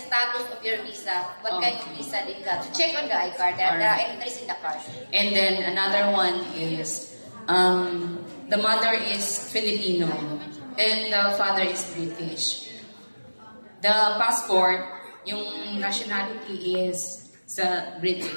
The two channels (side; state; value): both; inverted; correlation -1.00